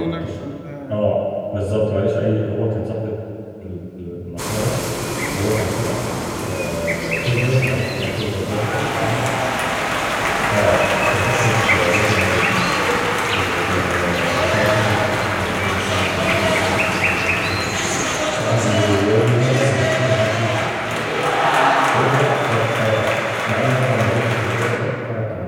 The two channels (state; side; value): identical; both; correlation 1.00